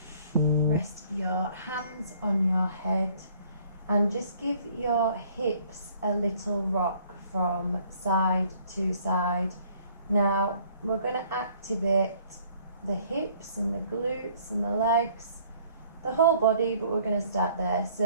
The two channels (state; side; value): inverted; both; correlation -0.59